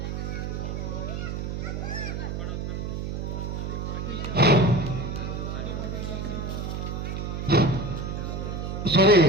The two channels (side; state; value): right; noise; hum, 4 dB below the sound